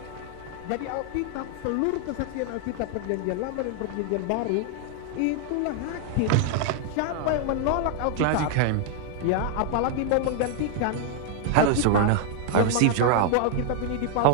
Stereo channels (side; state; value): both; different; correlation 0.00